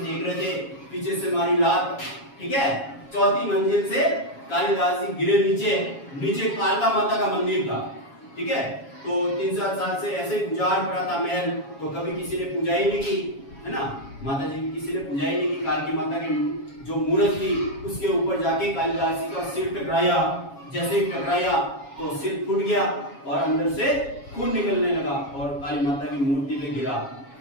रहे थे, पीछे से मारी लात, ठीक है। 4थी मंजिल से कालिदास जी गिरे नीचे कालका माता का मंदिर था, ठीक है। तो 3-7 साल से ऐसे ही गुजार पड़ा था महल, तो कभी किसी ने पूजा ही नहीं की, है ना, माता जी की किसी ने पूजा ही नहीं की। कालकी माता की जो मूर्त थी उसके ऊपर जाके कालिदास जी का सिर टकराया, जैसे ही टकराया तो सिर फूट गया और अंदर से खून निकलने लगा और काली माता की मूर्ति पे गिरा।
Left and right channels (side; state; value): right; late; 7.3 ms